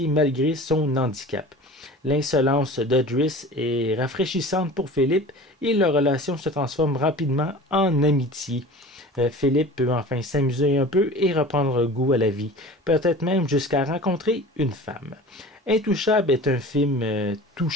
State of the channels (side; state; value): both; normal; correlation 0.39